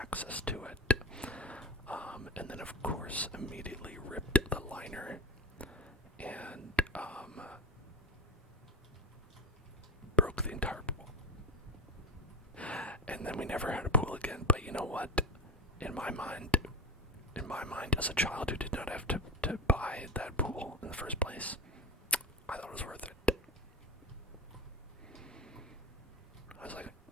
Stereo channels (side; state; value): both; normal; correlation 0.22